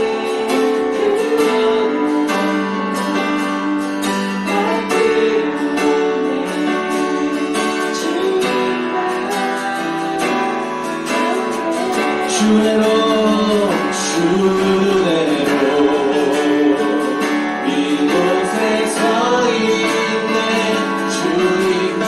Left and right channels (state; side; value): identical; both; correlation 1.00